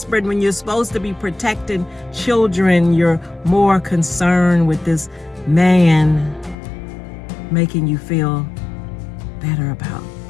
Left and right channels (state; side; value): drops out; right; at 6.6 s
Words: When you're supposed to be protecting children, you're more concerned with this man making you feel better about